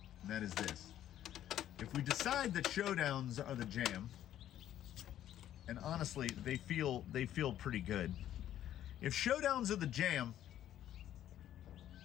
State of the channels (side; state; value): right; quieter; 11.7 dB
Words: And that is this. If we decide that Showdowns are the jam, and honestly, they feel pretty good. If Showdowns are the jam,